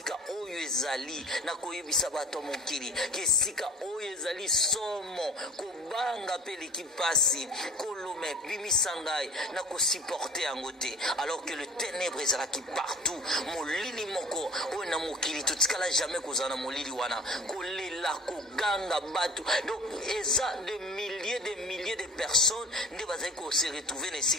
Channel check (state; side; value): normal; both; correlation 0.42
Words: oyo ezali na koyebisa bato mokili, que sika oyo ezali somo kobanga pe l'équipasi kolome bimisangai na ko supporter yango te, alors que le ténèbre ezalaki partout. Molili moko oyo na mokili totikala jamais kozana molili wana kolela koganga bato. Donc eza de milliers de personnes nde bazali ko se retrouver na